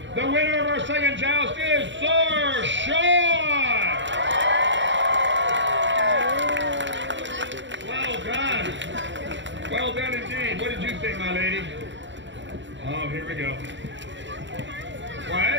The winner of our second joust is Sir Sean! Well done. Well done indeed. What did you think, my lady? Oh, here we go.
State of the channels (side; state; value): left; late; 0.54 ms